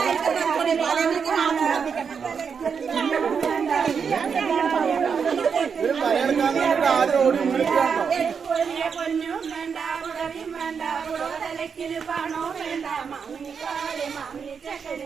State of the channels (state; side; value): quieter; left; 6.3 dB